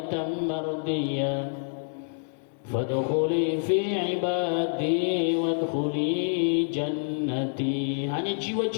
mardiyah fadkhuli fi ibadi wadkhuli jannati. Hanya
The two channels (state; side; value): silent; right; 60 dB below the other